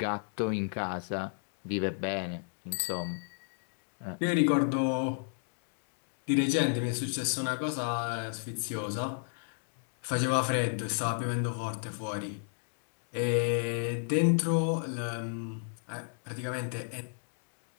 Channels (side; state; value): right; silent; digital silence